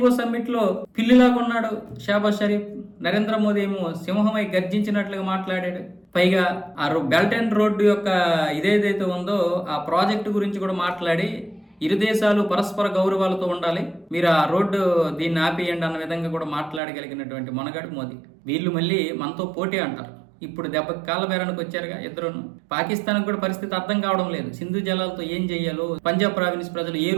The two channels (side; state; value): left; drops out; at 16.8 s